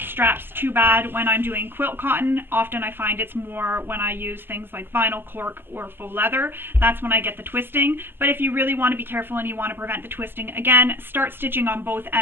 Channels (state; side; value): late; left; 0.10 ms